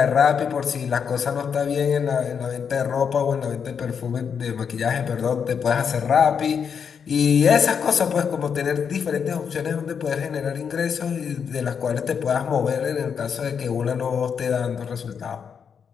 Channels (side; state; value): right; quieter; 6.9 dB